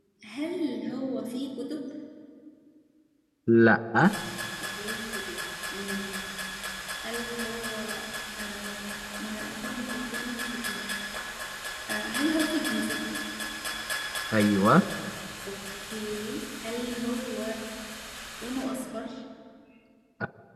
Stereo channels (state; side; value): identical; both; correlation 1.00